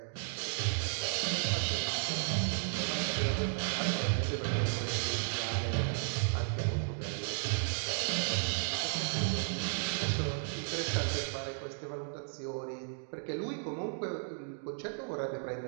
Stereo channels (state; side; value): silent; left; digital silence